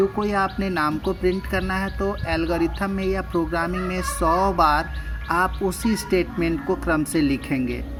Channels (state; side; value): identical; both; correlation 1.00